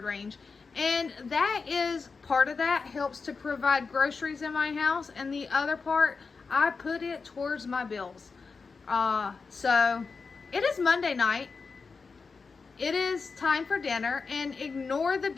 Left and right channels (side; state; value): right; quieter; 4.7 dB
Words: range. And that is, part of that helps to provide groceries in my house, and the other part, I put it towards my bills. So it is Monday night. It is time for dinner, and ignore the